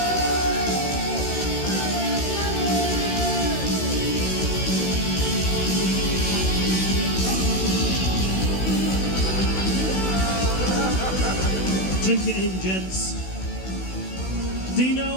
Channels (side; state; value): right; late; 16 ms